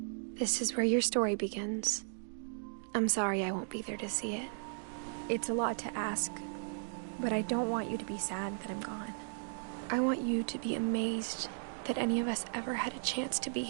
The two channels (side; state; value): left; silent; digital silence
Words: This is where your story begins. I'm sorry I won't be there to see it. It's a lot to ask, but I don't want you to be sad that I'm gone. I want you to be amazed that any of us ever had a chance to be